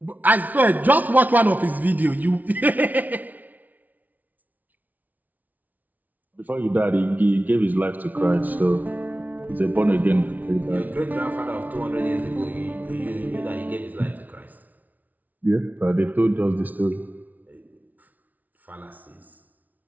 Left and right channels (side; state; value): left; late; 0.077 ms